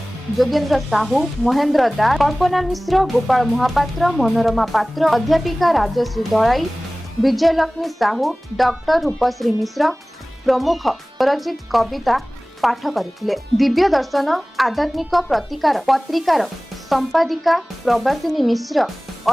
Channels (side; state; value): both; normal; correlation 0.98